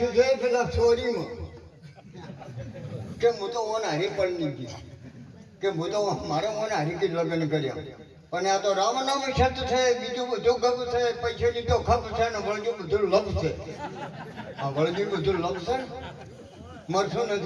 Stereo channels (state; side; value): identical; both; correlation 1.00